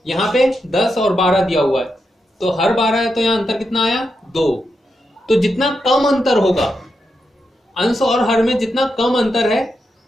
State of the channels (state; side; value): normal; both; correlation 0.85